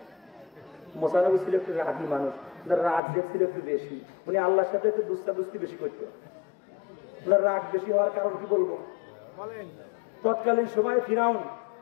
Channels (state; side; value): drops out; right; at 3.0 s